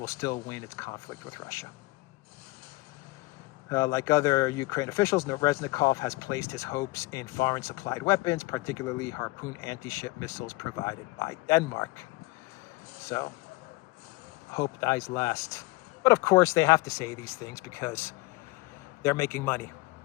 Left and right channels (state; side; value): quieter; right; 22.2 dB